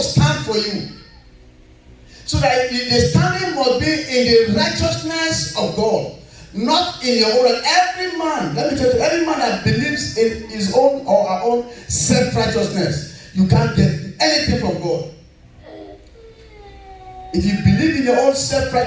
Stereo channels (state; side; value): identical; both; correlation 1.00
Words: stand for you. So that the standing must be in the righteousness of God, not in your own. Every man, let me tell you, every man that believes in his own or our own self-righteousness, you can't get anything from God. If you believe in your own